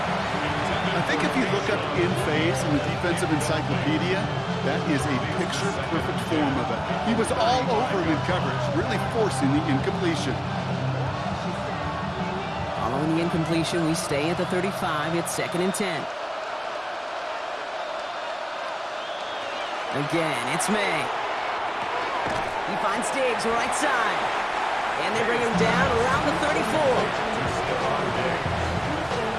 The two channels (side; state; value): both; identical; correlation 1.00